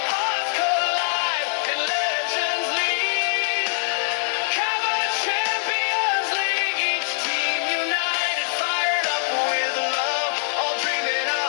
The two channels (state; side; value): silent; right; digital silence